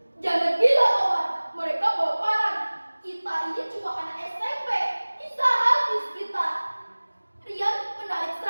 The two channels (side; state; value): both; inverted; correlation -1.00